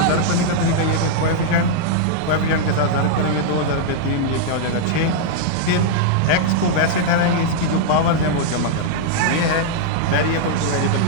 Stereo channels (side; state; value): both; different; correlation -0.01